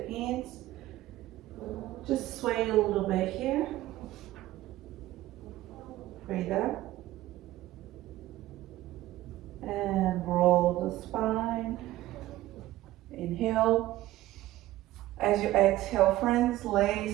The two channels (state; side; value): quieter; left; 15.8 dB